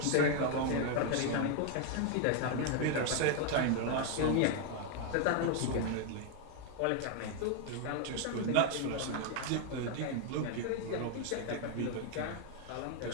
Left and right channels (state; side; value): different; both; correlation 0.00